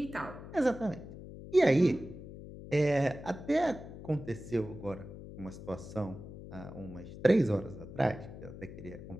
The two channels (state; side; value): noise; left; hum, 13 dB below the sound